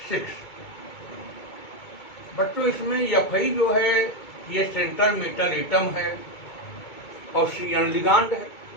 बच्चों, इसमें Fe जो है ये सेंट्रल मेटल एटम है और Cn लिगांड है।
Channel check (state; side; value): late; right; 2.2 ms